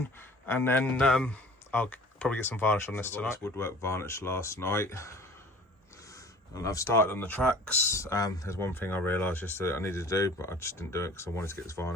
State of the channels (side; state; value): both; normal; correlation 0.46